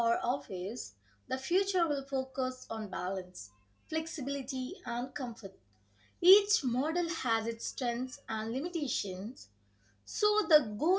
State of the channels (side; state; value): both; identical; correlation 1.00